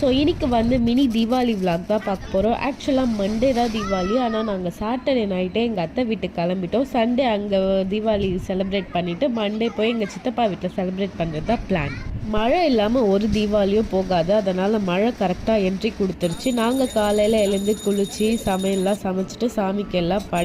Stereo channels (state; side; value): identical; both; correlation 1.00